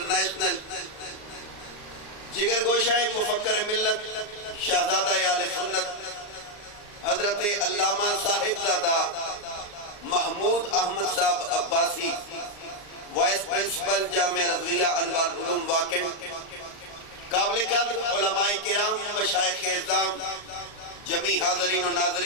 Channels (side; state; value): right; late; 39 ms